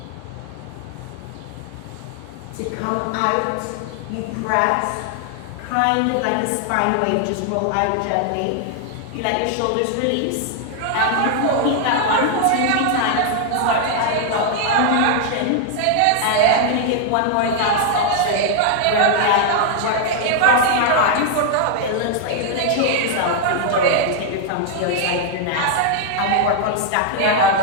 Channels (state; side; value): different; both; correlation 0.00